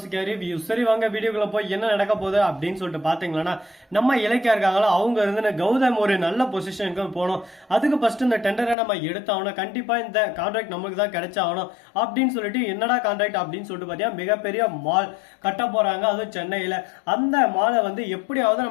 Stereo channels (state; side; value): drops out; right; at 8.8 s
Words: ரிவ்யூ. சரி வாங்க வீடியோக்குள்ள போய் என்ன நடக்க போகுது அப்படின்னு சொல்லிட்டு பாத்தீங்கன்னா, நம்ம இலக்கியா இருக்காங்களோ அவங்க இருந்து கௌதம் ஒரு நல்ல பொசிஷனுக்கு போகணும். அதுக்கு ஃபர்ஸ்ட் இந்த டெண்டரை நம்ம எடுத்தாகணும், கண்டிப்பா இந்த கான்ட்ராக்ட் நமக்கு தான் கிடைச்சாகணும் அப்படின்னு சொல்லிட்டு என்னடா கான்ட்ராக்ட் அப்படின்னு சொல்லிட்டு பாத்தீங்கன்னா மிகப்பெரிய மால் கட்ட போறாங்க, அதுவும் சென்னையில. அந்த மாலை எப்படியாவது